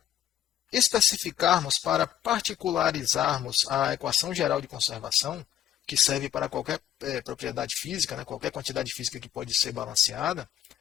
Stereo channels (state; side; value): quieter; right; 10.9 dB